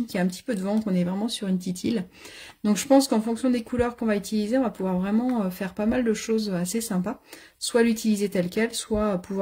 qu'il y a un petit peu de vent, qu'on est vraiment sur une petite île. Donc je pense qu'en fonction des couleurs qu'on va utiliser, on va pouvoir vraiment faire pas mal de choses assez sympas. Soit l'utiliser tel quel, soit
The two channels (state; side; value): identical; both; correlation 1.00